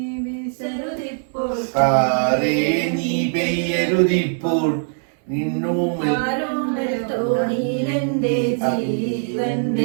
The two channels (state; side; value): silent; left; 61 dB below the other